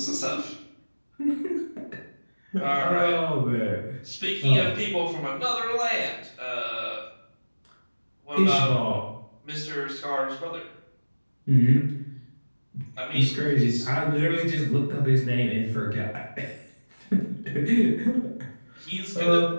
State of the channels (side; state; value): both; inverted; correlation -1.00